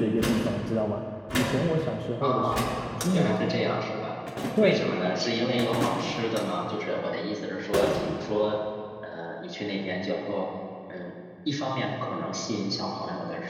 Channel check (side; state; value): both; identical; correlation 1.00